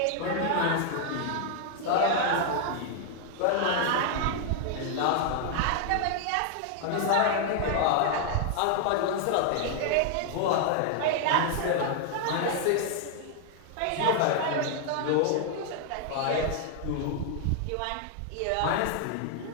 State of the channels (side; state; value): both; different; correlation 0.00